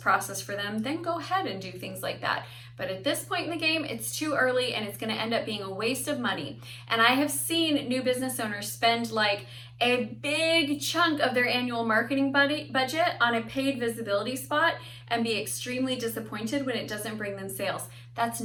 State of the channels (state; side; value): identical; both; correlation 1.00